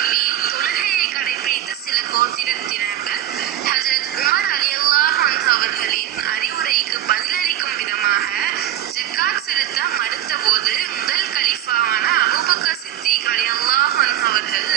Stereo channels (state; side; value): quieter; left; 12.5 dB